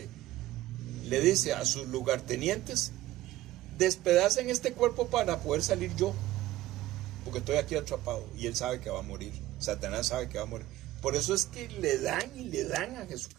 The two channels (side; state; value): left; quieter; 15.7 dB